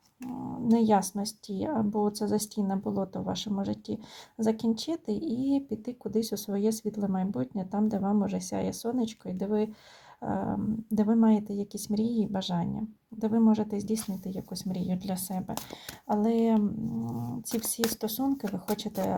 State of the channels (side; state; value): both; identical; correlation 1.00